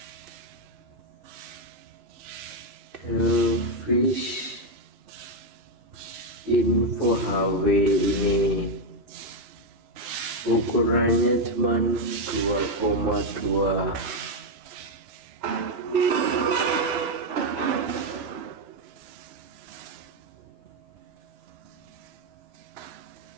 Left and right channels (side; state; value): left; late; 3.0 ms